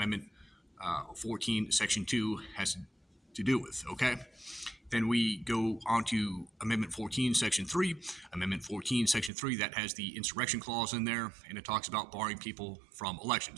14, Section 2 has to do with, okay? Then we go on to Amendment 14, Section 3. Amendment 14, Section 3, that has the Insurrection Clause in there, and it talks about barring people from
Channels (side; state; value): left; drops out; at 9.3 s